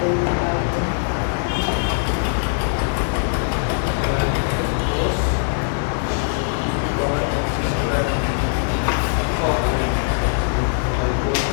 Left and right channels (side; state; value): right; silent; digital silence